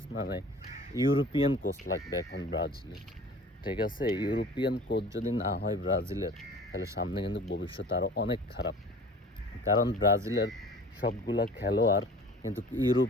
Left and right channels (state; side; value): normal; both; correlation 0.44